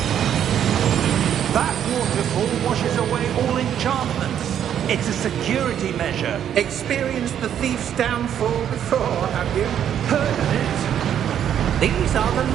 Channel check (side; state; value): left; quieter; 9.6 dB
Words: That waterfall washes away all enchantments. It's a security measure. Experienced the thief's downfall before, have you? Heard of it? These are the